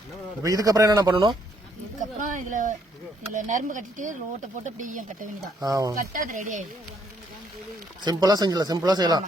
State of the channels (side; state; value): both; normal; correlation 0.70